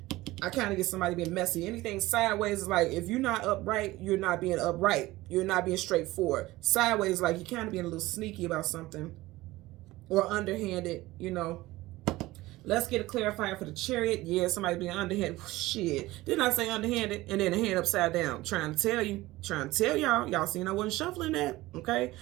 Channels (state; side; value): quieter; left; 18.5 dB